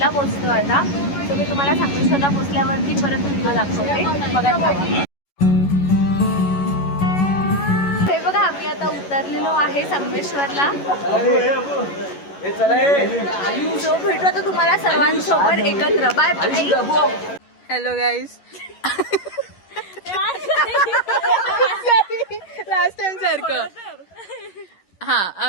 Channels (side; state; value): right; late; 11 ms